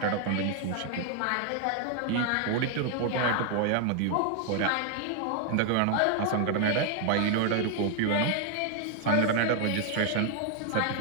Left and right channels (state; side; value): different; both; correlation 0.00